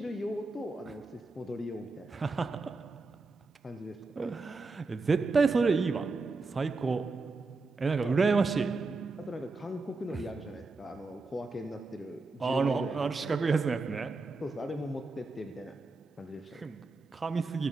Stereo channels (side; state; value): left; quieter; 3.7 dB